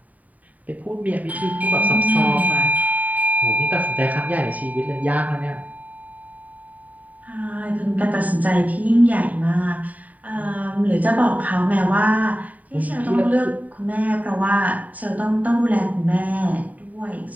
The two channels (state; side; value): late; left; 0.073 ms